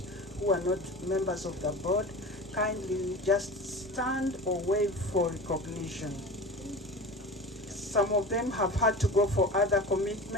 who are not members of the board. Kindly just stand or wave for recognition. Some of them have had to go for other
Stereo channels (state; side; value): normal; both; correlation 0.32